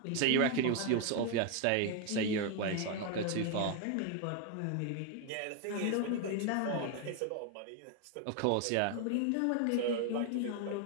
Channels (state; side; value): different; both; correlation 0.01